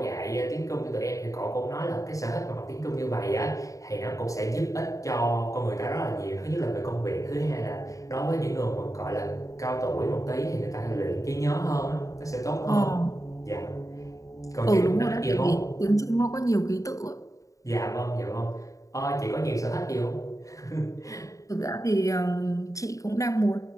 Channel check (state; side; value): late; right; 0.16 ms